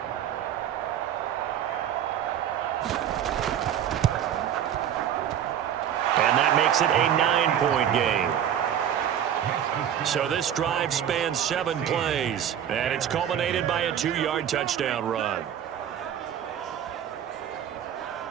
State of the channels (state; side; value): quieter; left; 9.8 dB